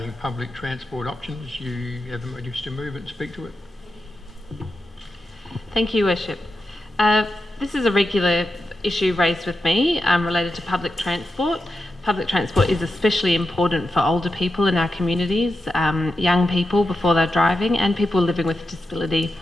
public transport options. You have a wish to move it and speak to it? Thank you, Worship. This is a regular issue raised with me related to public transport. Public transport is especially important for older people in our communities, young people before they're driving, and people living with disability.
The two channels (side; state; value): both; normal; correlation 0.89